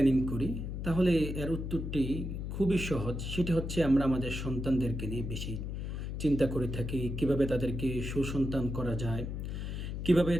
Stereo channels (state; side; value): noise; left; hum, 5 dB below the sound